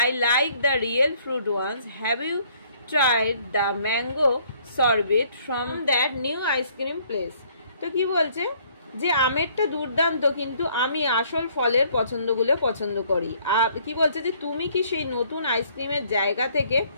like the real fruit ones, have you tried the mango sorbet from that new ice cream place. তো কি বলছে যে আমেরটা দুর্দান্ত, কিন্তু আমি আসল ফলের পছন্দগুলো পছন্দ করি। আর কি বলছে যে তুমি কি সেই নতুন আইসক্রিমের জায়গা থেকে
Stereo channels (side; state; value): both; inverted; correlation -0.62